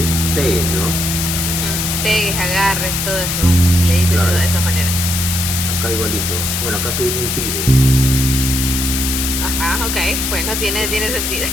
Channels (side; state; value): left; noise; hiss, 1 dB below the sound